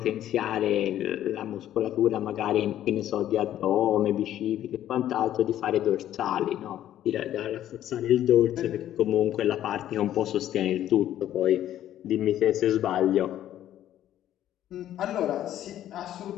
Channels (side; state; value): right; quieter; 12.0 dB